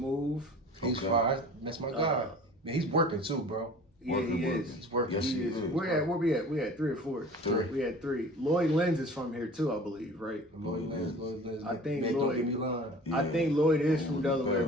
He's fire. That's my guy. Man, he's working too, bro. Yeah, he is. He's working. Yes, he is. Where we at? We had 3 or 4. 3. We had 3. Lloyd Lenz is from here too, I believe, right? Lloyd Lenz. I think man, Lloyd- don't get me lying. I think Lloyd is from Delaware,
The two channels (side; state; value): both; normal; correlation 0.43